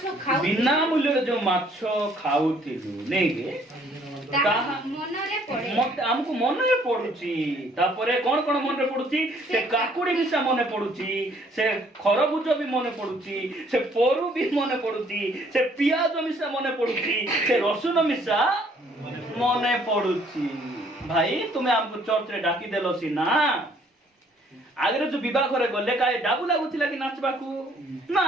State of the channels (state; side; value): normal; both; correlation 0.62